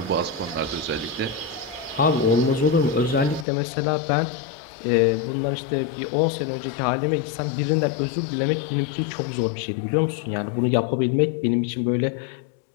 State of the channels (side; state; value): right; drops out; at 3.5 s